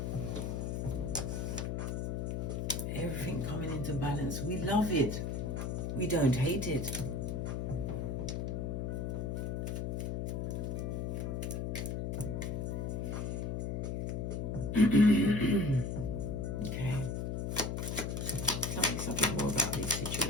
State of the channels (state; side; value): noise; left; hum, 1 dB below the sound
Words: Everything coming into balance. We love it. We don't hate it. Okay. Tell me something more about this